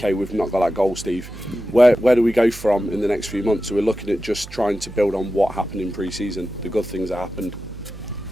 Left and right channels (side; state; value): right; noise; hum, 14 dB below the sound